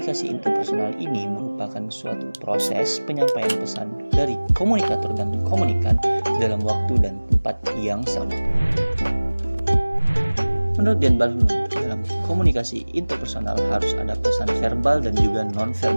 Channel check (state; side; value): inverted; both; correlation -1.00